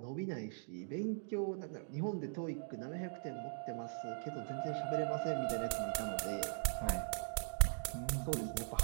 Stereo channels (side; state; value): left; silent; digital silence